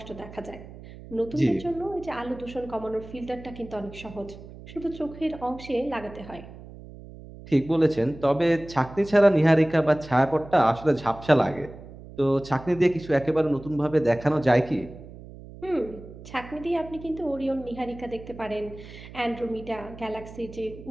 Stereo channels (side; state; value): right; noise; hum, 16 dB below the sound